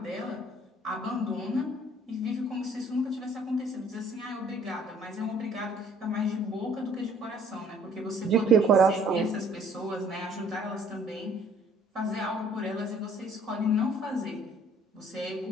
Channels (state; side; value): normal; both; correlation 0.58